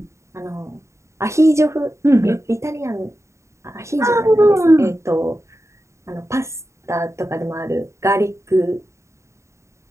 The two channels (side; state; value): left; late; 0.14 ms